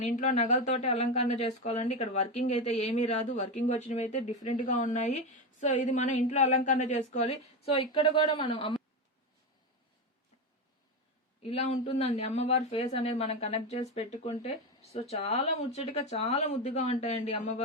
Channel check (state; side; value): normal; both; correlation 0.15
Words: ఇంట్లో నగలతోటి అలంకరణ చేసుకోవాలండి. ఇక్కడ వర్కింగ్ అయితే ఏమీ రాదు. వర్కింగ్ వచ్చినవి అయితే డిఫరెంట్ గా ఉన్నాయి. సో ఇది మనం ఇంట్లో అలంకరణ చేసుకోవాలి. సో ఇక్కడ కూడా మనం ఇలా ఉంటుందండి అమ్మవారి ఫేస్ అనేది మనం కనెక్ట్ చేసి పెట్టుకుంటే. సో చాలా ముచ్చటగా చాలా ముద్దుగా ఉంటాయండి